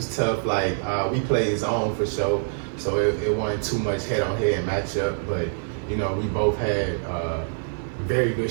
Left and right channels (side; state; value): left; silent; digital silence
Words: tough. Like we played his own for sure, so it wasn't too much head-on-head matchup. But we both had very